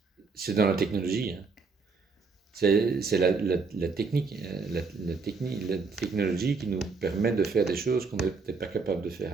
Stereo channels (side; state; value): left; quieter; 4.6 dB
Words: c'est dans la technologie. Hein. C'est la technique, la technologie qui nous permet de faire des choses qu'on n'était pas capable de faire